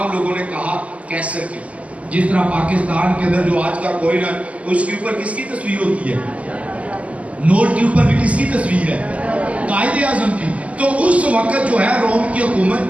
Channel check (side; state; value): left; late; 0.067 ms